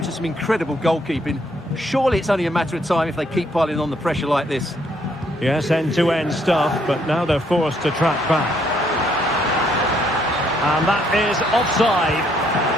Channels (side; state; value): both; normal; correlation 0.69